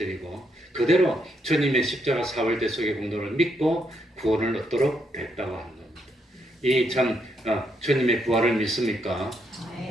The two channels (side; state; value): both; normal; correlation 0.77